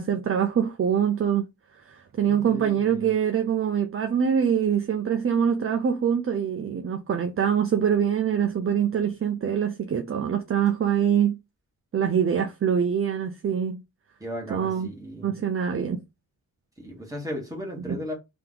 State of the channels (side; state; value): left; quieter; 7.6 dB